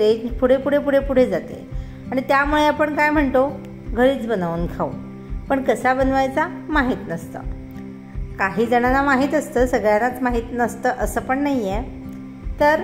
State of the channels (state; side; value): identical; both; correlation 1.00